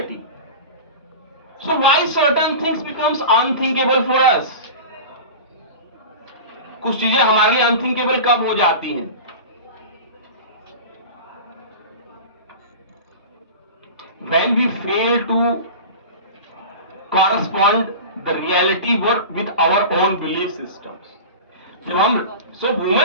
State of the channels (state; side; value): inverted; both; correlation -0.32